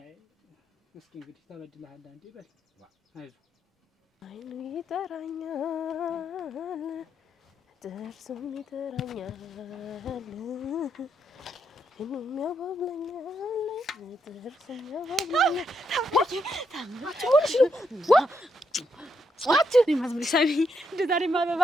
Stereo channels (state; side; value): normal; both; correlation 0.79